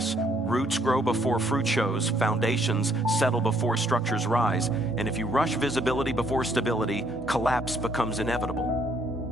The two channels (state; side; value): normal; both; correlation 0.67